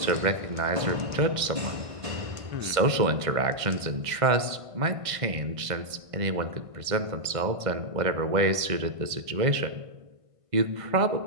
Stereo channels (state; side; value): late; left; 1.5 ms